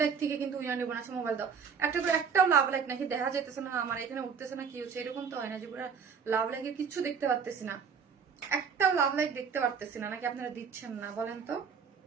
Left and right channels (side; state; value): left; quieter; 6.3 dB